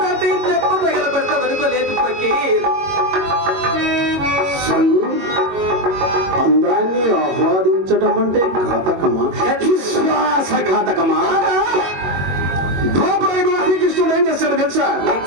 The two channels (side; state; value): left; late; 22 ms